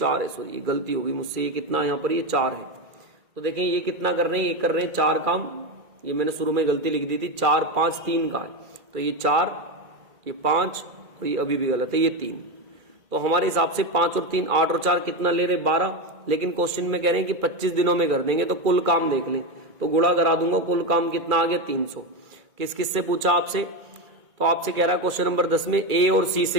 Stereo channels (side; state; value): left; late; 2.3 ms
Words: है, सॉरी ये गलती होगी मुझसे, ये कितना यहाँ पर ये 4 है। तो देखिए ये कितना कर रहे हैं, ये कर रहे हैं 4 काम, ये मैंने शुरू में गलती लिख दी थी, 4, 5, 3 का है। तो ये 4, ये 5 और ये अभी भी गलत है, ये 3। तो हमारे हिसाब से 5 और 3 8 और 4 कितना ले रहे 12, लेकिन क्वेश्चन में कह रहे हैं कि 25 दिनों में कर देंगे। तो कुल काम देख लें, तो गुणा करा दूंगा, कुल काम कितना आ गया 300। किस किस से पूछा आपसे, तो आपसे कह रहा है क्वेश्चन नंबर 10 में ए और सी